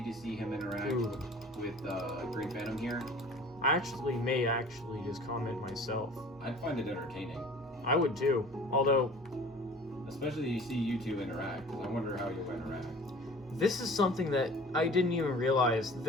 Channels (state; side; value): normal; both; correlation 0.45